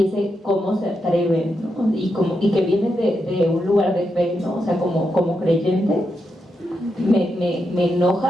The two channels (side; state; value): both; normal; correlation 0.85